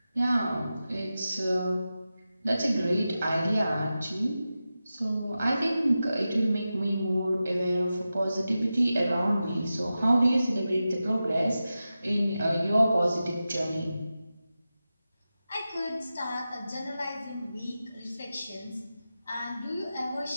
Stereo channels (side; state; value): both; inverted; correlation -0.93